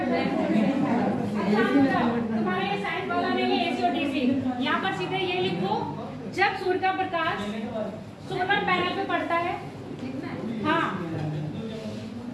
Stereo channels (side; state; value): both; identical; correlation 1.00